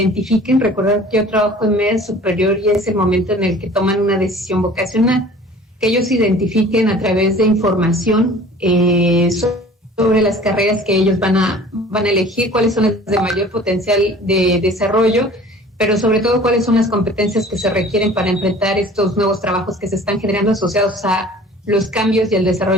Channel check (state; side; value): normal; both; correlation 0.46